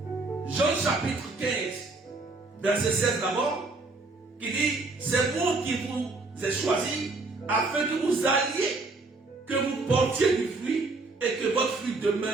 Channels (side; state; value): left; quieter; 3.5 dB